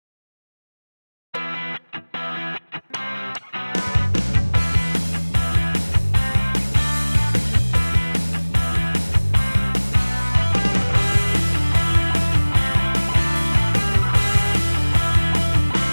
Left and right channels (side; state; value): both; inverted; correlation -1.00